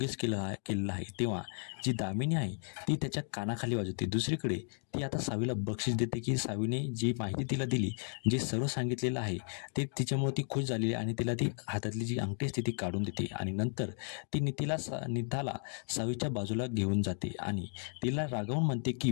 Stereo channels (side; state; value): right; silent; 55 dB below the other